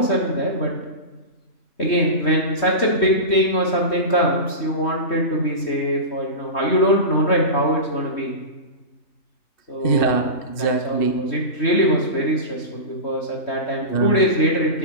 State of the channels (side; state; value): right; late; 3.2 ms